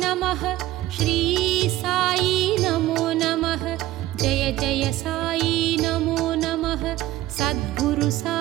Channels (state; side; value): quieter; left; 15.5 dB